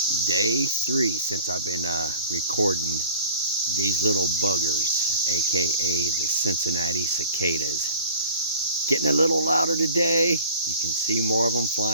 Day 3 since I've been recording these little buggers, aka the Cincinnati cicadas. Getting a little louder today. You can see more of them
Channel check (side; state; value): both; inverted; correlation -0.47